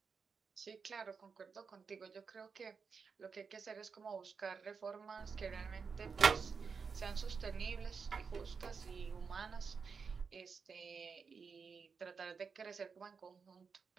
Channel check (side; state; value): left; quieter; 5.5 dB